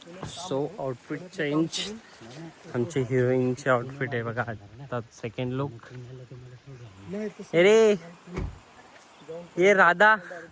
So outfit change. आमची हिरोईनची आउटफिट आहे बघा. आता सेकंड लुक. अरे ये राधा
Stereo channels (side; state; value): both; identical; correlation 1.00